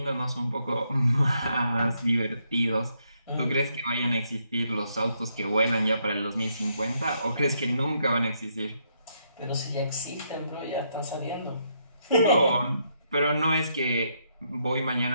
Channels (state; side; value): inverted; both; correlation -0.76